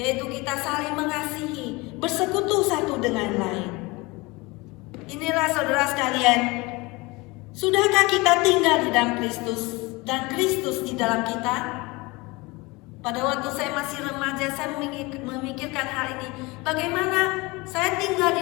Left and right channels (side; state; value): right; quieter; 24.1 dB